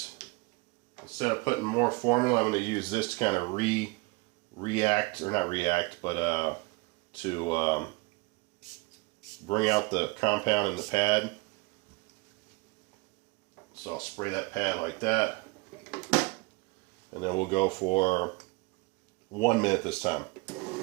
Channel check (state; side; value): quieter; left; 25.9 dB